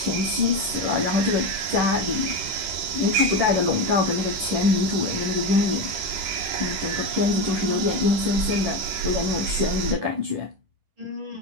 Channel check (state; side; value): late; left; 10 ms